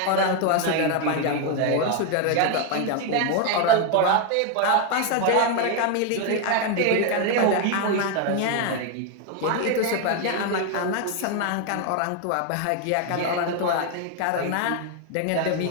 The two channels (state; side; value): different; both; correlation 0.01